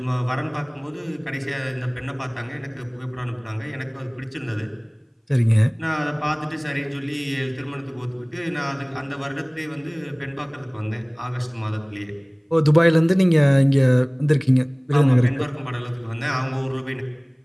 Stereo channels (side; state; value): both; identical; correlation 1.00